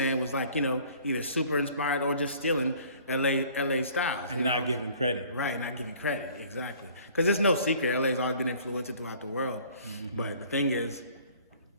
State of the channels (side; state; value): both; inverted; correlation -0.53